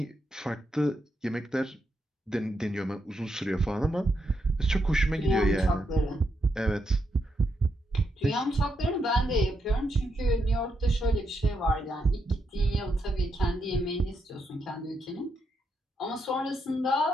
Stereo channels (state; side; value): normal; both; correlation 0.82